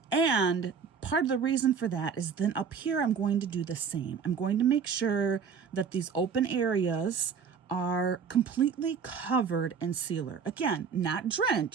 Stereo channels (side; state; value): left; quieter; 6.3 dB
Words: And part of the reason for that is then up here, I'm going to do the same. I'm going to make sure that these open areas are completely covered in sealer. Again, not